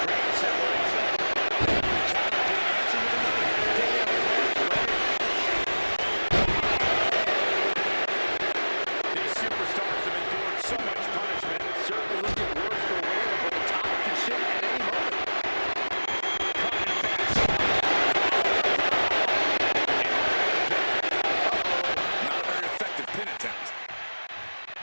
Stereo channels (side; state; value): both; inverted; correlation -1.00